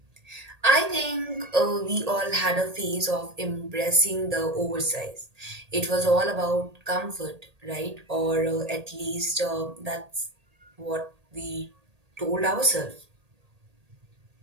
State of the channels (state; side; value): late; left; 1.8 ms